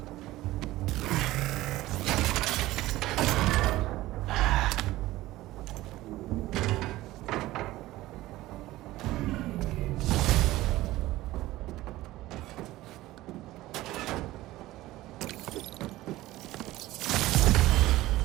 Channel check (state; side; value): quieter; left; 17.0 dB